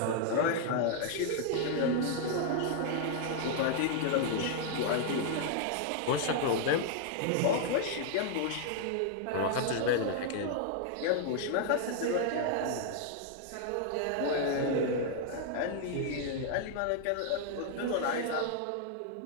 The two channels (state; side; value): different; both; correlation 0.00